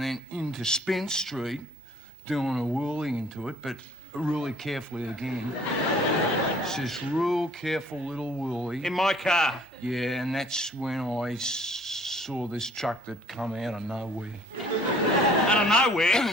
then into Spence Street, doing a whirly into it, but really carefully again. It's this real careful little whirly. In my car? Yeah, and that's when I saw this truck that come out of nowhere. Out of nowhere?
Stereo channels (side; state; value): both; normal; correlation 0.55